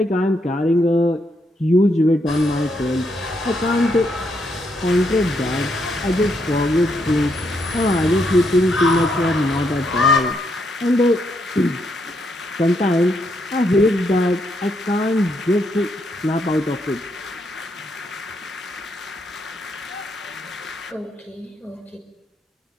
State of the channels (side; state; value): both; normal; correlation 0.77